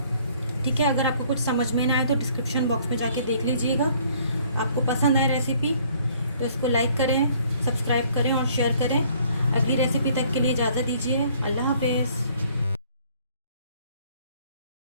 ठीक है। अगर आपको कुछ समझ में ना आए तो डिस्क्रिप्शन बॉक्स में जाके देख लीजिएगा। आपको पसंद आए रेसिपी तो इसको लाइक करें, सब्सक्राइब करें और शेयर करें। अगली रेसिपी तक के लिए इजाज़त दीजिए। अल्लाह हाफ़िज़।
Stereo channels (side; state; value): both; inverted; correlation -0.60